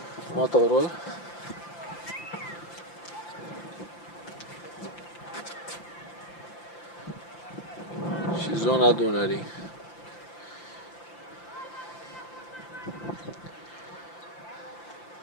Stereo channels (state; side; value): late; right; 5.8 ms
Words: Motorul. Și zona Dunării.